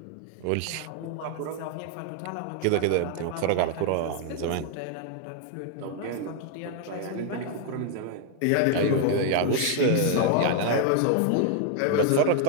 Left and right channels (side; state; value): both; different; correlation 0.00